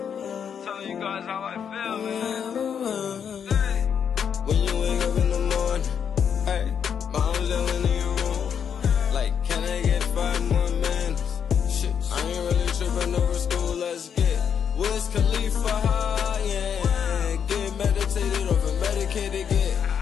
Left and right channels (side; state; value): right; quieter; 7.7 dB